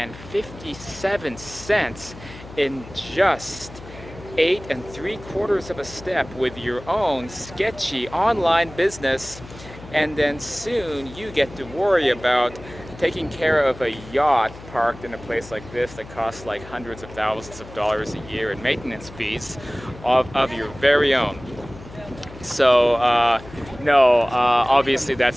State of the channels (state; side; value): noise; left; hum, 17 dB below the sound